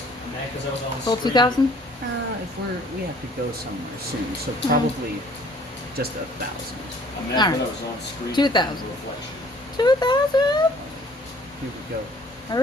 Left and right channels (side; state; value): both; normal; correlation 0.56